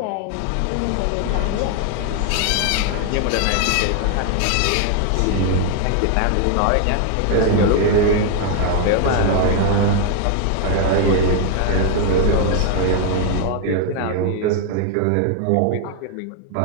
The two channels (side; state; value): both; different; correlation 0.00